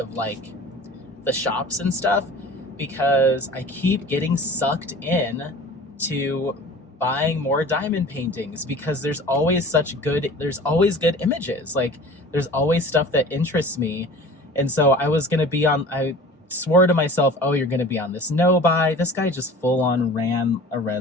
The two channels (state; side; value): normal; both; correlation 0.41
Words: like the shops and stuff, because I keep getting sucked in to buying more diamond paintings because there's always good images. Like there's always stuff that interests me. And so I swore to myself, oh, you're going to be on this no buy. This guy just full on ran a